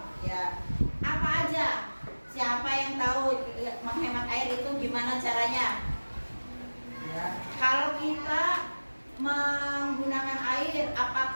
ya. Apa aja? Siapa yang tahu menghemat air itu gimana caranya? Ya. Kalau kita menggunakan air,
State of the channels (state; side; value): inverted; both; correlation -1.00